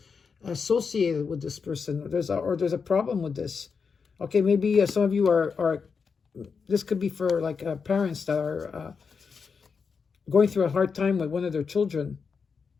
associated with this person. There's a problem with this. Okay, maybe some of you are this could be for like parents that are going through a hard time with one of their children.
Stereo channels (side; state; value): right; quieter; 5.6 dB